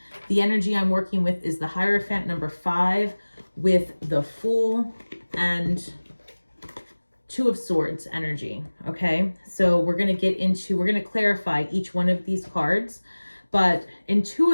the energy I'm working with is the Hierophant, number 5, with the Fool and 2 of Swords energy. Okay, so we're going to clarify each one of these cards. But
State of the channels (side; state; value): both; inverted; correlation -1.00